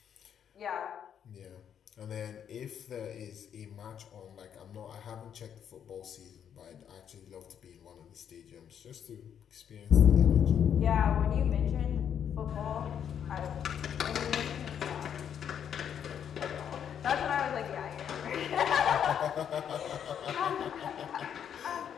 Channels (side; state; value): right; quieter; 8.7 dB